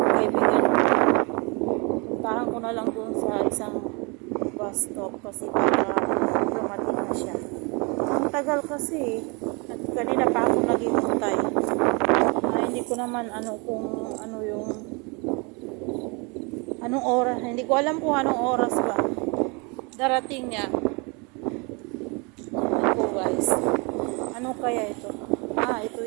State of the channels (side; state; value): left; quieter; 30.5 dB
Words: kaibigan ko. Puntahan ko na lang doon sa isang bus stop kasi para dumating na siya. Ang tagal kasi. At kanina pa ako naghihintay. Hindi ko naman anong oras. Hindi ko alam kung anong oras ba darating niya. Ito guys. Ano kaya ito? Ito